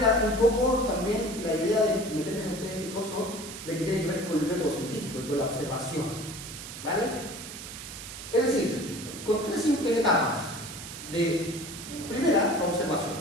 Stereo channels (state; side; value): noise; right; hiss, 11 dB below the sound